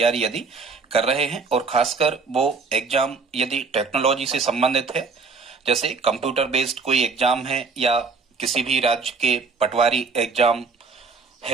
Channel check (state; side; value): quieter; left; 4.6 dB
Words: यदि कर रहे हैं और खासकर वो एग्जाम यदि टेक्नोलॉजी से संबंधित है, जैसे कंप्यूटर बेस्ड कोई एग्जाम है या किसी भी राज्य के पटवारी एग्जाम